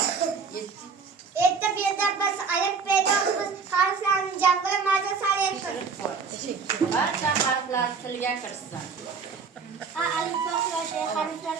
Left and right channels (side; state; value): left; quieter; 5.3 dB